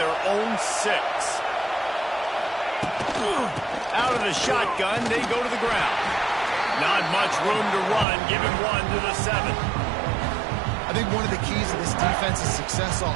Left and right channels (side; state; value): left; drops out; at 8.1 s